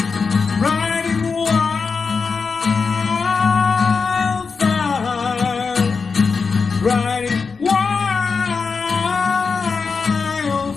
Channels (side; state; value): right; quieter; 5.0 dB